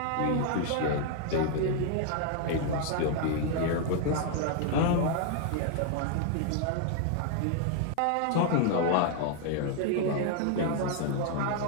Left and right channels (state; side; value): different; both; correlation 0.00